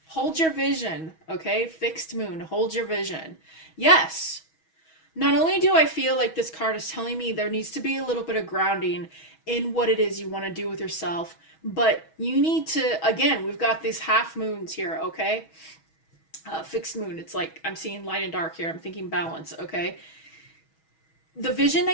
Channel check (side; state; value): right; late; 6.2 ms